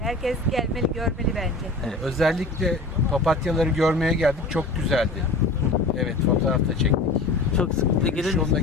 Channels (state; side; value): quieter; right; 3.1 dB